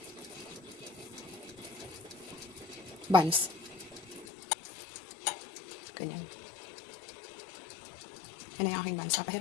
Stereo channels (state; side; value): drops out; right; at 4.2 s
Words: Buns. Ganyan. Yan ang aking buns.